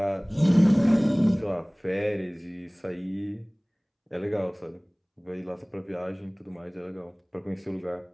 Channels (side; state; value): both; identical; correlation 1.00